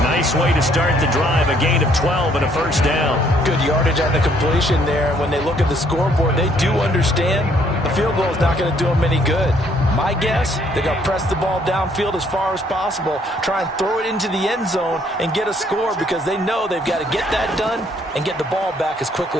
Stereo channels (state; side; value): normal; both; correlation 0.66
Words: Nice way to start the drive, a gain of 12 and a first down. Good yardage on the completion there. And when they look at the scoreboard, they do understand the field goal is not going to do them any good. My guess, they're going to press the ball downfield as far as possible, try and throw it into the end zone and get a score because they know they've got to get that done and get the ball back as